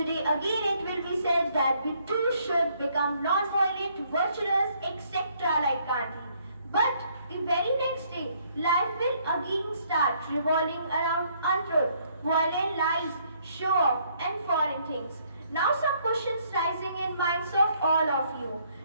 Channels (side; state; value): both; inverted; correlation -0.67